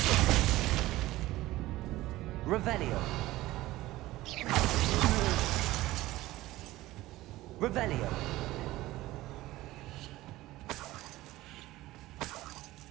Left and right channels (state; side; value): quieter; left; 17.3 dB